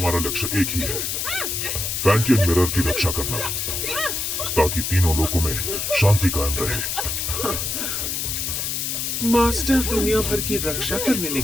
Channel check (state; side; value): noise; left; hiss, 2 dB below the sound